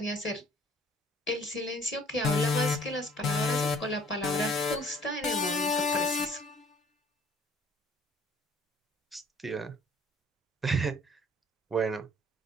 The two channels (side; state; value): both; normal; correlation 0.56